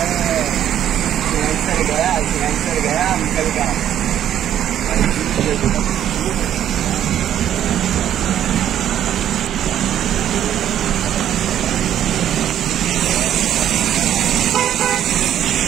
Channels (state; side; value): quieter; left; 10.8 dB